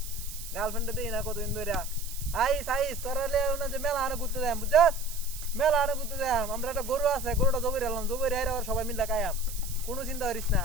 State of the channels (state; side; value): noise; right; hiss, 11 dB below the sound